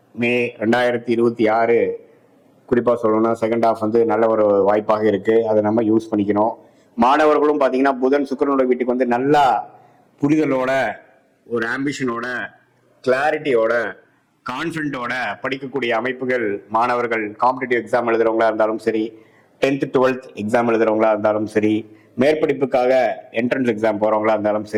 மே 2026 குறிப்பா சொல்லணும்னா செகண்ட் ஹாஃப் நல்ல ஒரு வாய்ப்பாக இருக்கு. அதை நம்ம யூஸ் பண்ணிக்கணும். மாணவர்களும் பாத்தீங்கன்னா புதன் சுக்கிரனோட வீட்டுக்கு நல்லா புரிதலோட, ஒரு ஆம்பிஷனோட, கிளாரிட்டியோட, கான்ஃபிடென்ட்டோட படிக்கக்கூடிய அமைப்புகள் மாணவர்கள் காம்படிட்டிவ் எக்ஸாம் எழுதுறவங்களா இருந்தாலும் சரி, 10th 12th எக்ஸாம் எழுதுறவங்களா இருந்தாலும் சரி, மேற்படிப்புக்காக என்ட்ரன்ஸ் எக்ஸாம் போறவங்களா இருந்தாலும்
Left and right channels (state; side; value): identical; both; correlation 1.00